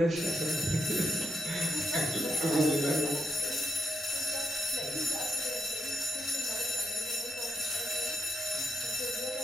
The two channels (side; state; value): both; normal; correlation 0.81